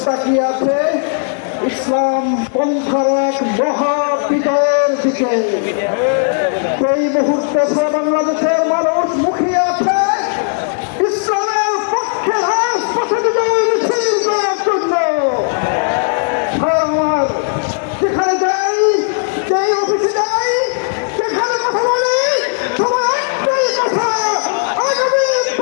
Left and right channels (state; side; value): silent; right; digital silence